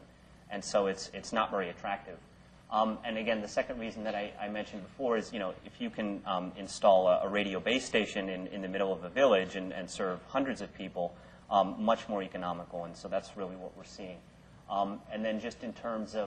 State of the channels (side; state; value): both; identical; correlation 1.00